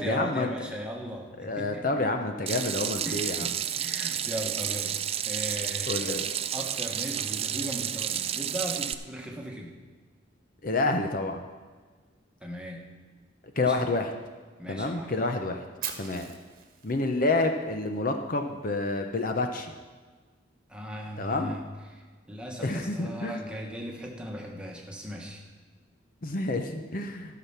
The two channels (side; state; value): both; normal; correlation 0.17